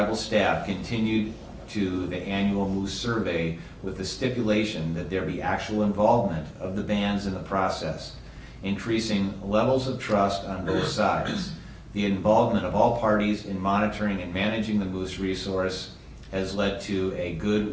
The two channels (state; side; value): identical; both; correlation 1.00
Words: staff continued to the annual moose survey with the stipulation that there be actual involvement of the bands in the process, increasing levels of trust on both sides. The involvement of all parties in monitoring and managing the moose resource has led to a good